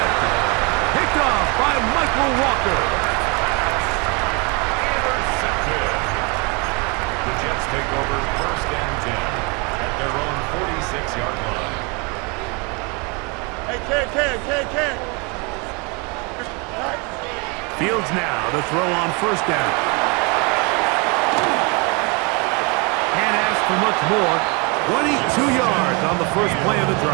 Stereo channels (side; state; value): left; quieter; 30.9 dB